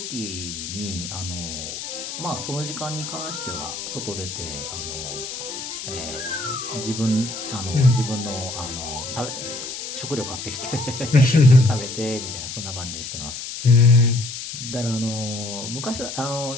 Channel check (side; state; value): left; noise; hiss, 7 dB below the sound